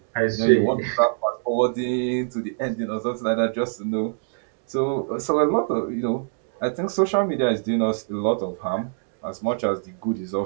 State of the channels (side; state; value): left; silent; digital silence